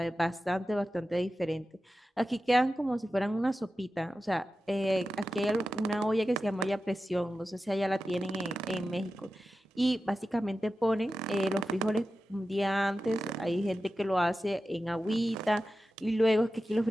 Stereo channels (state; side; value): normal; both; correlation 0.93